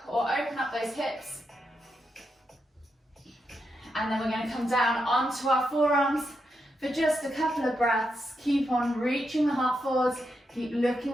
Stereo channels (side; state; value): both; normal; correlation 0.84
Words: or open up those hips. And then we're going to come down onto our forearms for just a couple of breaths. Keep on reaching the heart forwards. Keep